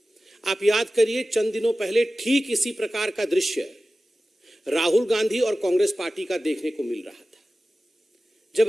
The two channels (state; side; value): normal; both; correlation 0.96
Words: आप याद करिए चंद दिनों पहले ठीक इसी प्रकार का दृश्य राहुल गांधी और कांग्रेस पार्टी का देखने को मिल रहा था।